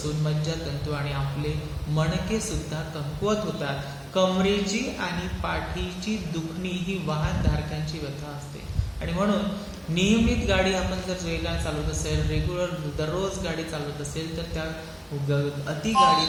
मज्जातंतू आणि आपले मणके सुद्धा कमकुवत होतात। कमरेची आणि पाठीची दुखणी ही वाहनधारकांची व्यथा असते आणि म्हणून नियमित गाडी आपण जर वेगाने चालवत असेल, रेग्युलर दररोज गाडी चालवत असेल तर त्या अति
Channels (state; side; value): identical; both; correlation 1.00